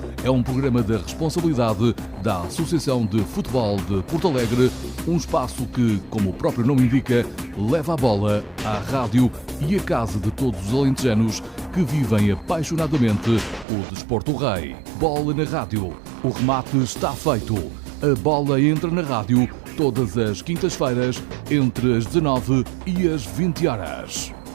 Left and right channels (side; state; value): left; drops out; at 13.7 s